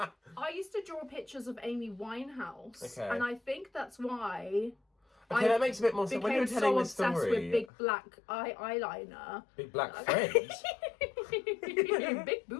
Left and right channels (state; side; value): drops out; right; at 7.7 s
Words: used to draw pictures of Amy Winehouse, and I think that's why that makes a bit more sense when you're telling the story. Obsessed with big black eyeliner, big black friends, big